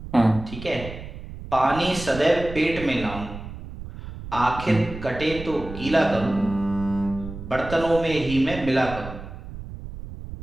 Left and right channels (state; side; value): noise; right; rumble, 11 dB below the sound